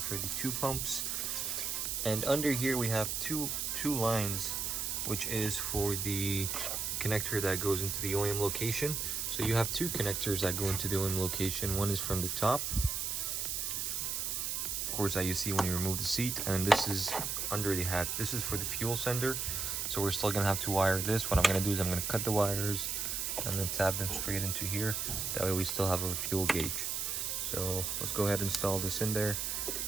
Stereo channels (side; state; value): right; noise; hiss, 1 dB below the sound